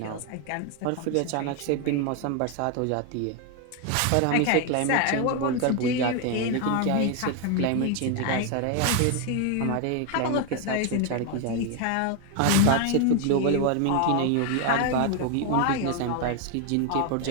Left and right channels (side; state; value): both; different; correlation 0.01